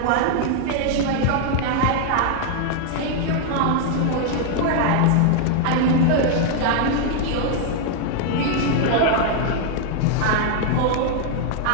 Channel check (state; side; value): different; both; correlation 0.00